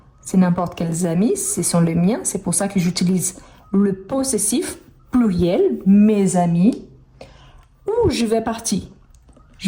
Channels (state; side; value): identical; both; correlation 1.00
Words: C'est n'importe quels amis, ce sont les miens. C'est pour ça que j'utilise le possessif pluriel, mes amis. Où je vais partir?